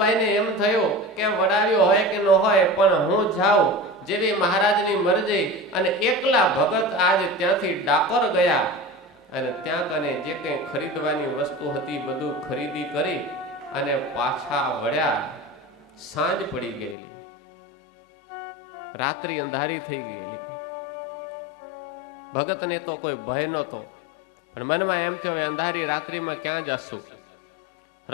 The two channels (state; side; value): drops out; right; at 16.9 s